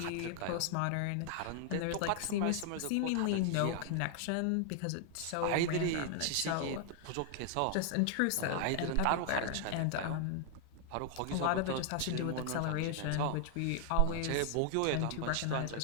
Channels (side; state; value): both; different; correlation 0.00